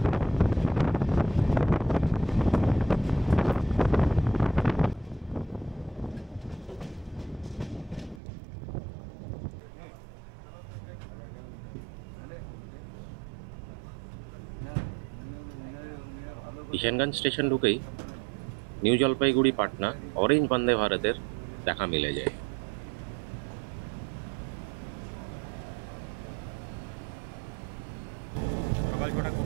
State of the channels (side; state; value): left; drops out; at 8.2 s